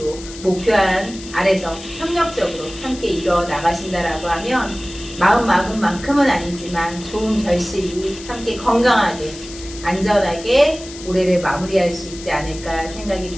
목표한 아래서 협력적으로 함께 이뤄 나가신다라고 하면 마음 막은 만큼은 아니지만 좋은 결실이 함께 건강하게 안전하게 올해를 마무리할 수 있지 않을까 생각이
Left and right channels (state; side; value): noise; left; hiss, 15 dB below the sound